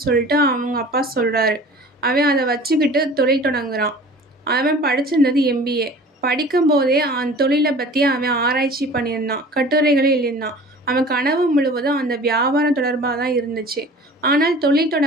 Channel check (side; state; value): both; normal; correlation 0.44